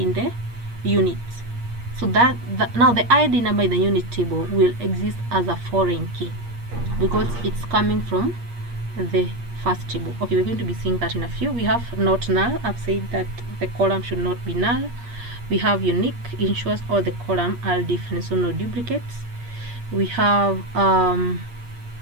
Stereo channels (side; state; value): left; late; 8.5 ms